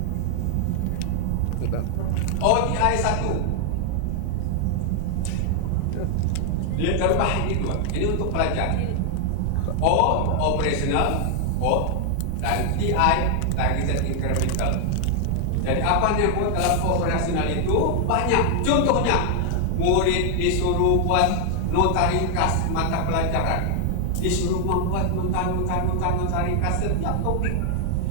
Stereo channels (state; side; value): different; both; correlation 0.00